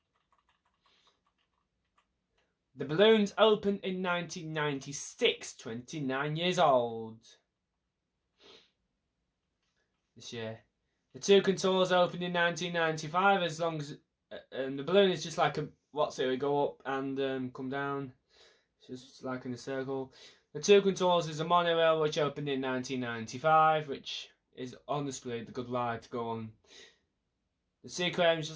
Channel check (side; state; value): both; identical; correlation 1.00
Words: The Balloons opened in 1996, 29 years old. This year. The Two Contours opened in 1995. As long as the balloon is just like we go up and come down. It's just like in a circle. The Two Contours is a monorail which opened in 1995, which is honestly the good ride to go on. The Sea Aquarium is